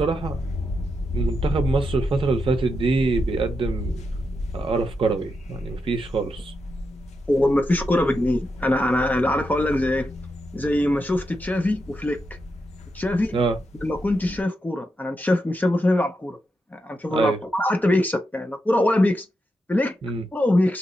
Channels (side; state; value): both; normal; correlation 0.85